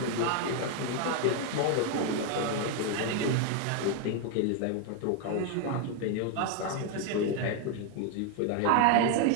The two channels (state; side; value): different; both; correlation 0.01